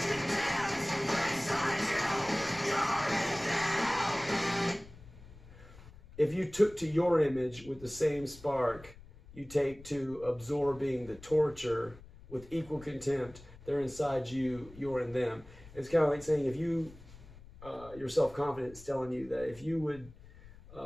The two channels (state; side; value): noise; left; rumble, 20 dB below the sound